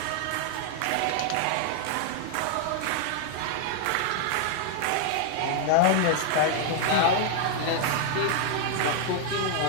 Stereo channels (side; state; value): both; different; correlation 0.00